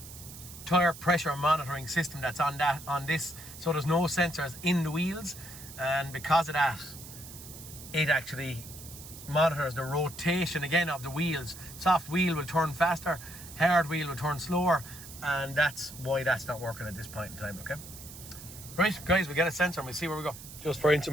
tire pressure monitoring system that's on this, so there's no sensors in the wheels, and because of that, it actually monitors the rotation again of the wheels. Soft wheel will turn faster, hard wheel will turn slower, and that's why that's not working at this point in time, okay? Right, guys, we get a sensor and we'll see where we go. Just for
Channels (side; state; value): right; noise; hiss, 15 dB below the sound